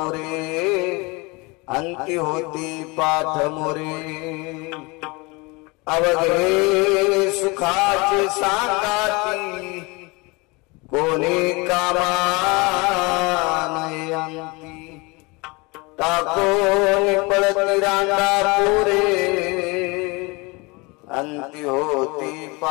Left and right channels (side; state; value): right; quieter; 26.5 dB